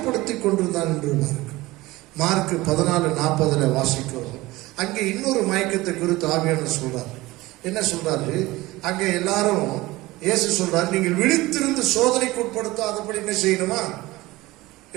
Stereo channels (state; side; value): quieter; left; 19.5 dB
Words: கொண்டிருந்தான் என்று மார்க் 14:40 வாசிக்கிறோம். அங்கே இன்னொரு மயக்கத்தை குறித்து ஆவியானவர் சொல்றார். என்ன சொல்றாரு? அங்கே எல்லாரும் இயேசு சொல்றாரு, நீங்கள் விழித்திருந்து சோதனைக்கு உட்படுத்தாதபடி என்ன செய்யணுமா?